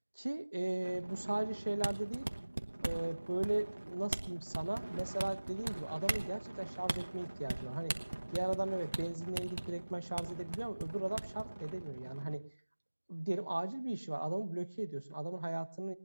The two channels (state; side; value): inverted; both; correlation -1.00